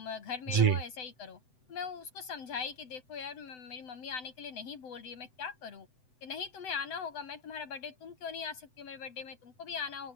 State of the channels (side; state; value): right; late; 7.9 ms